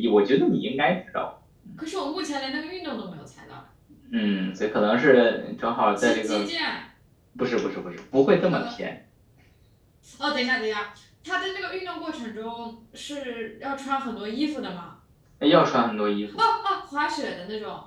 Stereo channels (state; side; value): identical; both; correlation 1.00